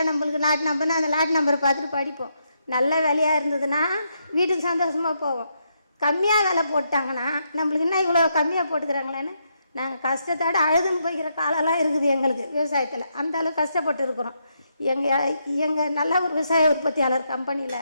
நம்மளுக்கு லாட் நம்பர்னு அந்த லாட் நம்பரை பார்த்துட்டு படிப்போம். நல்ல வேலையாக இருந்ததுன்னா வீட்டுக்கு சந்தோஷமாக போவோம். கம்மியாக வேலை போட்டாங்கன்னா நம்மளுக்கு என்ன இவ்வளோ கம்மியாக போட்டுக்கிறாங்களேன்னு நாங்கள் கஷ்டத்தோடு அழுதுன்னு போய்க்கிற காலெல்லாம் இருக்குது எங்களுக்கு விவசாயத்தில். அந்த அளவுக்கு கஷ்டப்பட்டு இருக்கிறோம். எங்கள் நல்ல ஒரு விவசாய உற்பத்தியாளர் கம்பெனியில்.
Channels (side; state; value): both; inverted; correlation -0.79